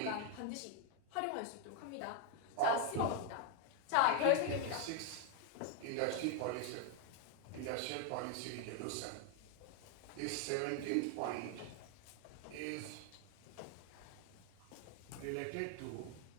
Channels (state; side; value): different; both; correlation 0.00